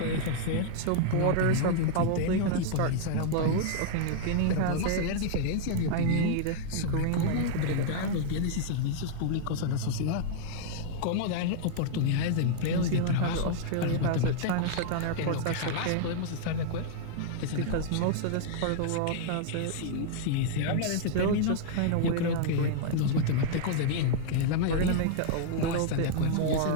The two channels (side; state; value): both; different; correlation -0.01